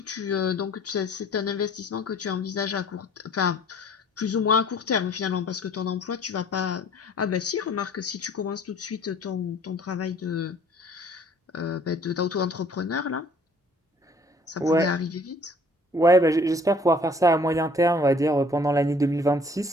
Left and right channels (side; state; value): both; normal; correlation 0.55